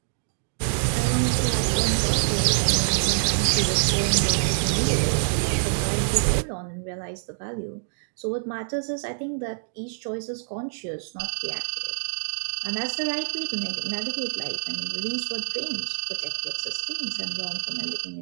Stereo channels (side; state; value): left; silent; digital silence